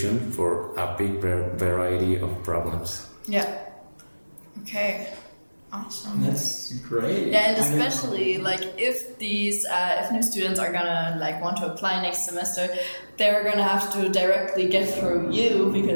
for a big variety of problems. Yeah. Okay. Awesome. That's great. Yeah, and especially if these if new students are gonna want to apply next semester, they're gonna have to directly get through you,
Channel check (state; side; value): inverted; both; correlation -1.00